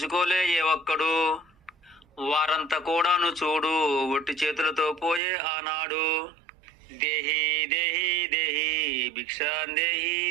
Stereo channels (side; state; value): left; drops out; at 5.2 s